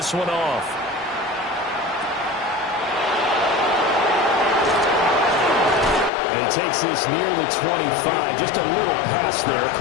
one off. And he takes this near the 25. Just a little pass there.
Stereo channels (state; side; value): drops out; right; at 6.1 s